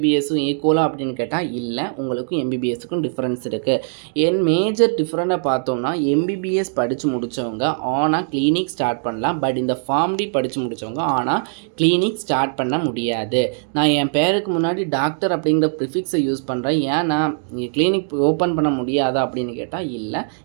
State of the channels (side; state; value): left; silent; digital silence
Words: ஈக்குவலாக அப்படின்னு கேட்டால் இல்லை, உங்களுக்கும் எம்பிபிஎஸ்ஸுக்கும் டிஃப்ரென்ஸ் இருக்குது. என் மேஜர் டிஃப்ரெண்ட்டாக பார்த்தோம்னா எம்பிபிஎஸ் படித்து முடித்தவங்க ஆனால் கிளினிக் ஸ்டார்ட் பண்ணலாம். பட் இந்த ஃபார்ம் டி படித்து முடித்தவங்க ஆனால் கிளினிக் ஸ்டார்ட் பண்ண முடியாது. நான் என் பேருக்கு முன்னாடி டாக்டர் அப்படிங்கிற ப்ரிஃபிக்ஸை யூஸ் பண்ணுறேன், ஏன்னா கிளினிக் ஓப்பன் பண்ண முடியாதா அப்படின்னு கேட்டால் இல்லை,